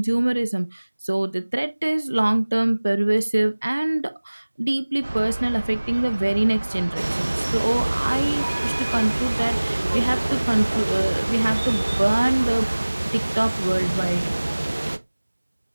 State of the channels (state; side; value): inverted; both; correlation -1.00